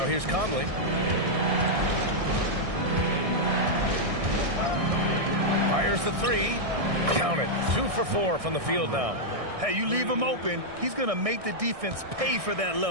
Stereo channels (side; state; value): left; late; 1.6 ms